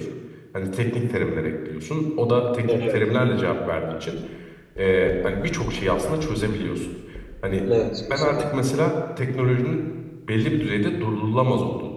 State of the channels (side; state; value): both; identical; correlation 1.00